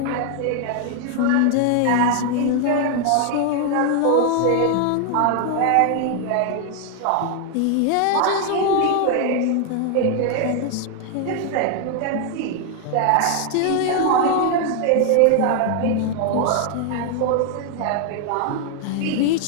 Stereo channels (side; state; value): both; different; correlation 0.00